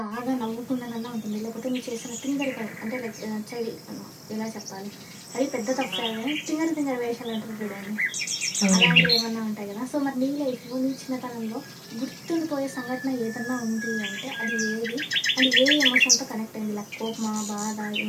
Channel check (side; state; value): both; identical; correlation 1.00